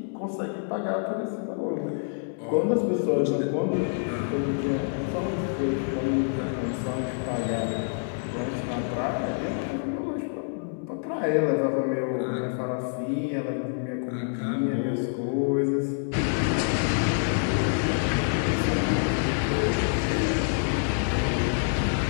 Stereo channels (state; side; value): silent; right; digital silence